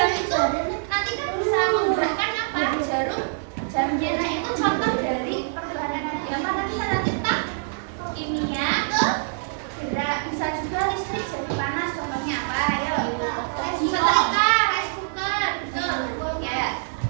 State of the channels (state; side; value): silent; left; digital silence